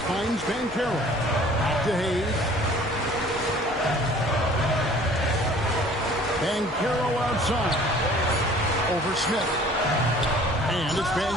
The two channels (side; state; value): both; normal; correlation 0.51